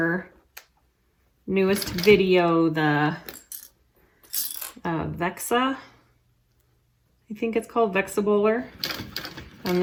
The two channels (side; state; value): both; identical; correlation 1.00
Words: newest video, the Vexa, I think it's called Vexa Bowler. And